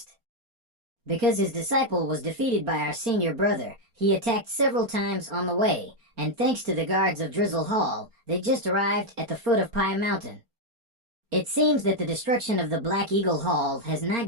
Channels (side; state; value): left; late; 4.3 ms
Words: Because his disciple was defeated by our senior brother, he attacked several times on the way, and thanks to the guards of Drizzle Hall, they just arrived at the foot of Pai Mountain. It seems that the destruction of the Black Eagle Hall has